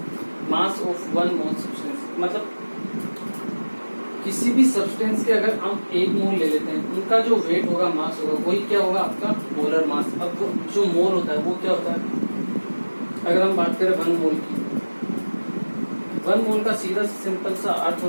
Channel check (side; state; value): both; inverted; correlation -1.00